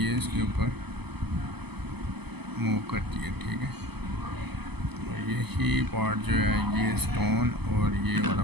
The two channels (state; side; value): late; left; 0.98 ms